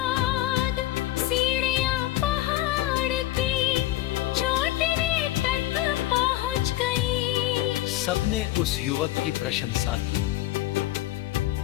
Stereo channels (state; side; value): quieter; right; 16.0 dB